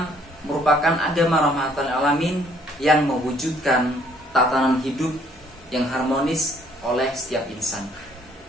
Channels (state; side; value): normal; both; correlation 0.63